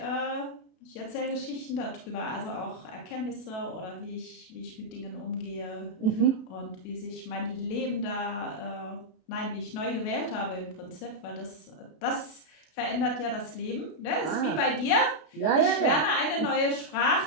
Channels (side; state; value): right; late; 32 ms